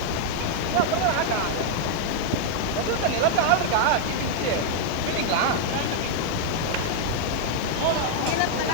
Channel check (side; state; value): both; different; correlation 0.00